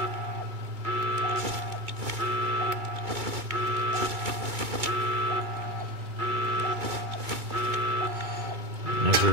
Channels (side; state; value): left; late; 2.2 ms